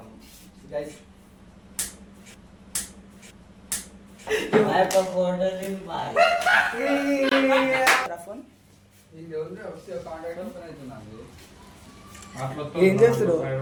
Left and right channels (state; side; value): identical; both; correlation 1.00